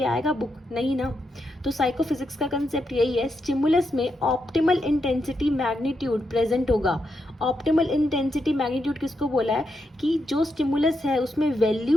आएगा बुक, नहीं ना। तो साइकोफिजिक्स का कंसेप्ट यही है, स्टिमुलस में ऑप्टिमल इंटेंसिटी मैग्नीट्यूड प्रेजेंट होगा। ऑप्टिमल इंटेंसिटी मैग्नीट्यूड किसको बोला है, कि जो स्टिमुलस है उसमें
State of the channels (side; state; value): both; normal; correlation 0.83